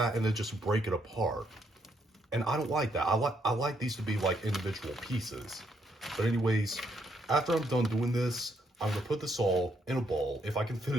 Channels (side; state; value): both; normal; correlation 0.74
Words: and then just break it apart. And I don't like that. I like these to be like individual pieces. But anyways, after I'm done doing this, I'm going to put this all in a bowl, if I can fit